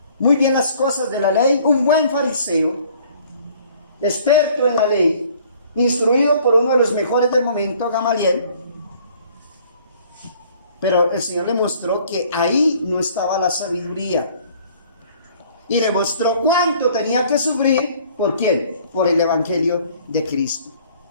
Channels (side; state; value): both; inverted; correlation -0.56